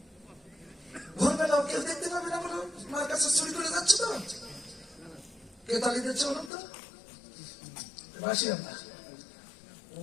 ভোরবেলাও কেউ দেখতে পাবে না বলো, মার কাছে চুরি করে যাচ্ছে তো, কে তালি দিচ্ছে বলুন তো, বাসি আমরা। ও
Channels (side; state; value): right; drops out; at 6.5 s